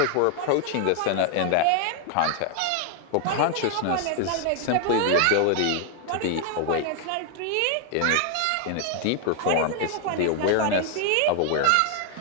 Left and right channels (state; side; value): different; both; correlation 0.00